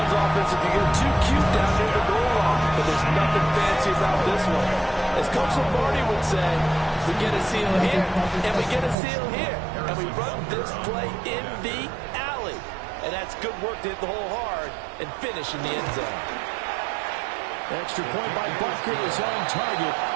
offensive can get too cute down near the goal line, but there's nothing fancy about this one. As Coach Lombardi would say, we get a seal here, and we get a seal here, and we run this play in the alley. And that's good work to hit the hole hard and finish in the end zone. Extra point by Butker is on target.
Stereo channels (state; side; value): drops out; left; at 9.0 s